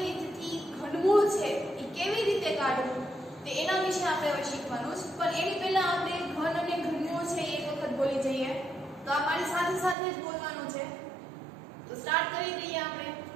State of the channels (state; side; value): drops out; left; at 10.0 s